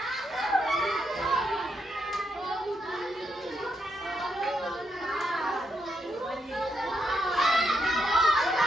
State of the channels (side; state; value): both; normal; correlation 0.80